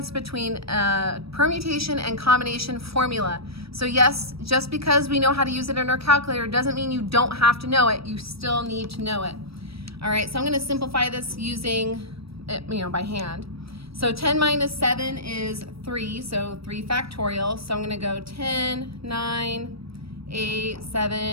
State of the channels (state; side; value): late; left; 0.77 ms